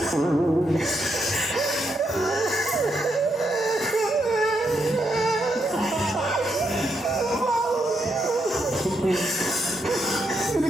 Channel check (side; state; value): both; normal; correlation 0.80